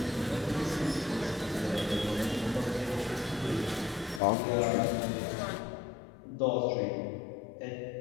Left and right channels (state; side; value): drops out; right; at 4.2 s